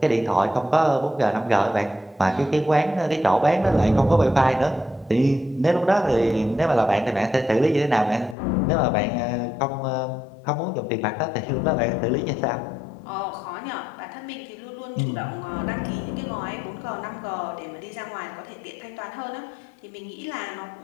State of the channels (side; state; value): right; drops out; at 8.3 s